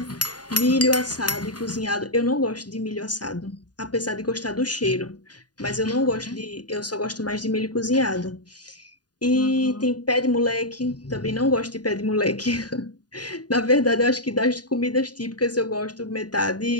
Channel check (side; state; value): right; late; 0.69 ms